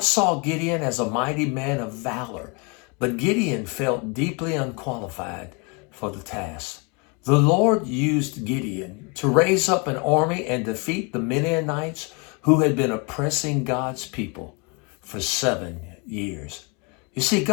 saw Gideon as a mighty man of valor, but Gideon felt deeply unqualified for the task. The Lord used Gideon to raise up an army and defeat the Midianites who had been oppressing God's people for 7 years. You see,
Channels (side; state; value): right; quieter; 31.7 dB